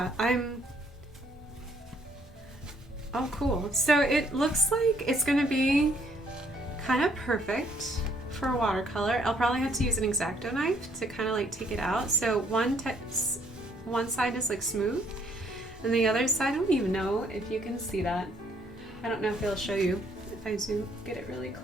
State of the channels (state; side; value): normal; both; correlation 0.67